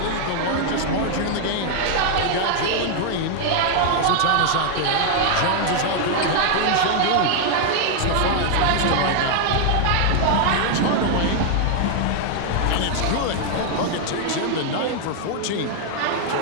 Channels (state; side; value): different; both; correlation 0.00